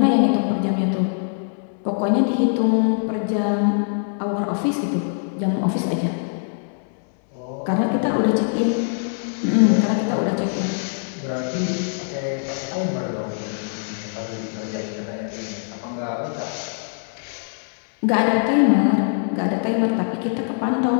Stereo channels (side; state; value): right; silent; 64 dB below the other